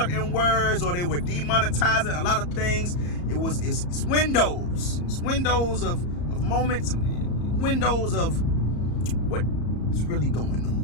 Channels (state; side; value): late; right; 34 ms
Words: words, or they were demonetizing a lot of things. It's Windows. It's Windows of moments, windows of what's really going on.